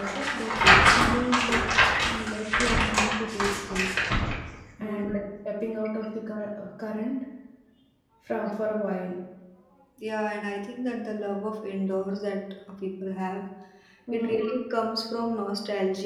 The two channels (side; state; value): both; identical; correlation 1.00